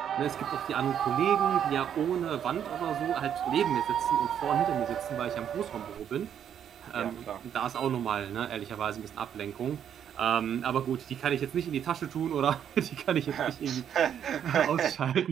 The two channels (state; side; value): quieter; left; 9.1 dB